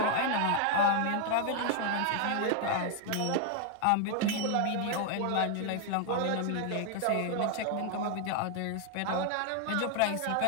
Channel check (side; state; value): both; different; correlation 0.00